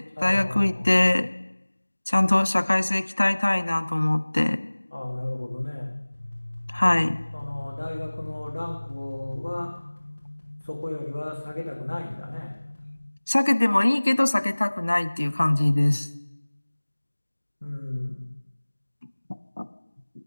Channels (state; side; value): inverted; both; correlation -1.00